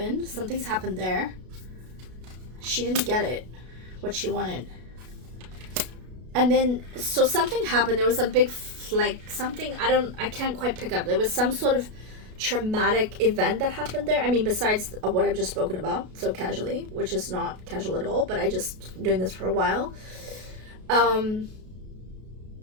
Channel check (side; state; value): left; late; 33 ms